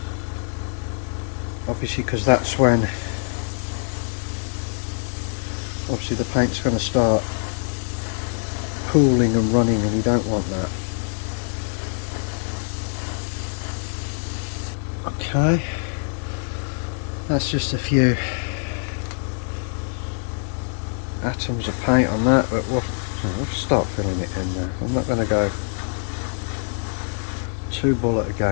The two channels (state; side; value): silent; right; 63 dB below the other